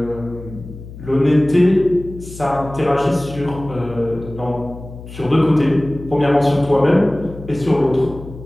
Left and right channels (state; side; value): noise; left; hum, 14 dB below the sound